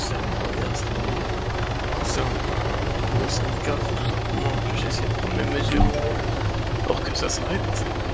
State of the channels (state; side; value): identical; both; correlation 1.00